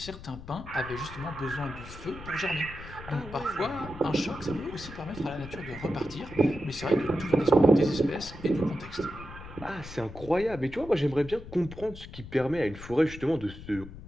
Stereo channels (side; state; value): left; noise; rumble, 14 dB below the sound